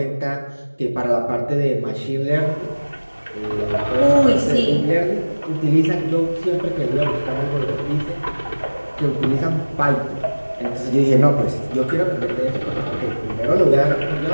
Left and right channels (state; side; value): inverted; both; correlation -1.00